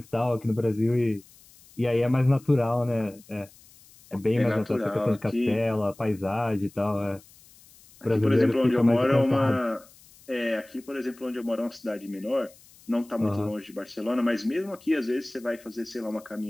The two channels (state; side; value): noise; left; hiss, 25 dB below the sound